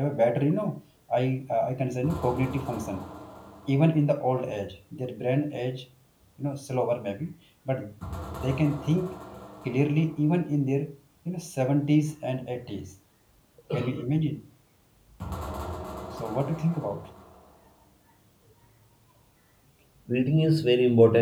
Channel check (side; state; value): both; identical; correlation 1.00